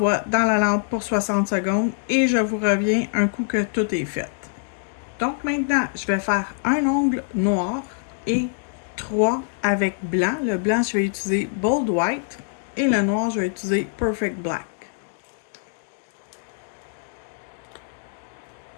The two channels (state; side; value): silent; right; digital silence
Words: dans la lampe pour 60 secondes et je vous reviens un coup que tout est fait. Donc maintenant, je vais faire un ongle noir et 3 avec blanc. Le blanc, je vais utiliser Bold White et le noir, je vais utiliser Perfect Black.